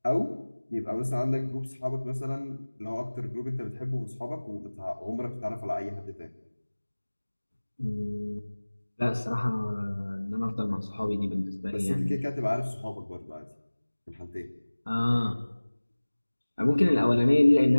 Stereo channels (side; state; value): both; inverted; correlation -1.00